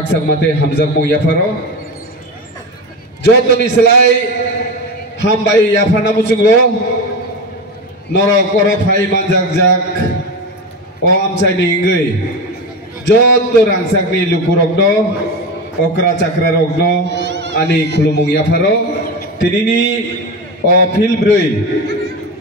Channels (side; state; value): both; normal; correlation 0.22